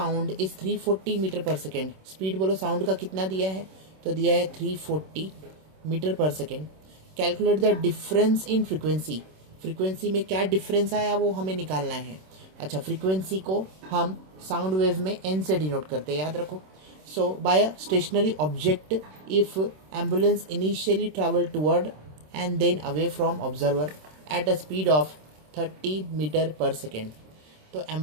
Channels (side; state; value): left; late; 26 ms